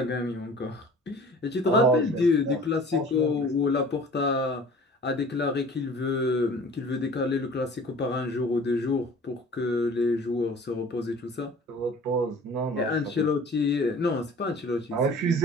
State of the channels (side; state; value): both; normal; correlation 0.46